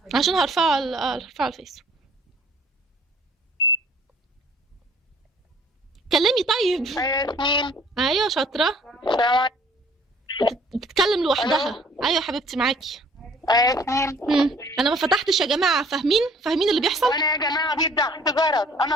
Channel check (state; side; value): normal; both; correlation 0.56